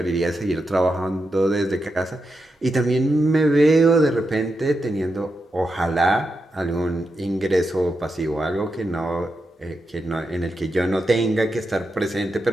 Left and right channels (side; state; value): both; normal; correlation 0.87